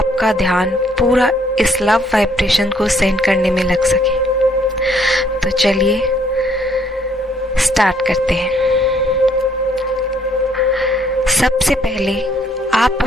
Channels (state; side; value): normal; both; correlation 0.66